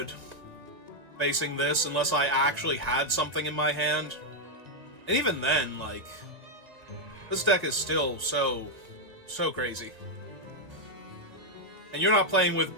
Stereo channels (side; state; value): left; late; 1.9 ms